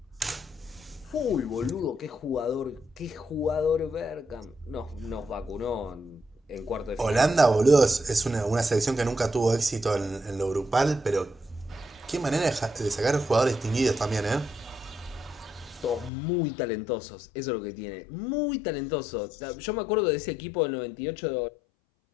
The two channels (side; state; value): right; drops out; at 16.1 s